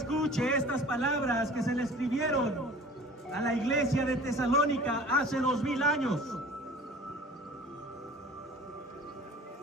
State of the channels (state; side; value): normal; both; correlation 0.44